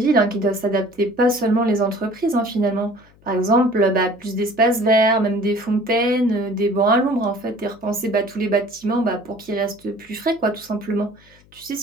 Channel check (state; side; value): noise; left; hum, 29 dB below the sound